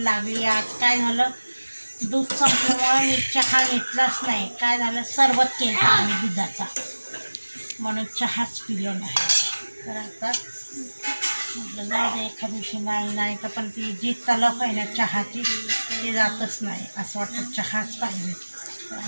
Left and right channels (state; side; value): inverted; both; correlation -1.00